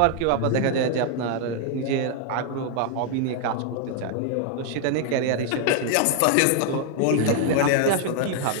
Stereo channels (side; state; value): both; different; correlation 0.00